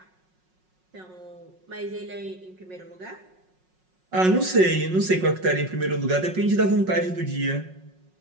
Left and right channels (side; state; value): left; late; 5.5 ms